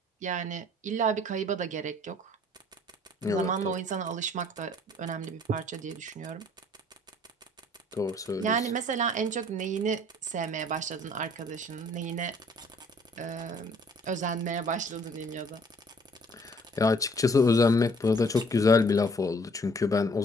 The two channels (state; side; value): normal; both; correlation 0.58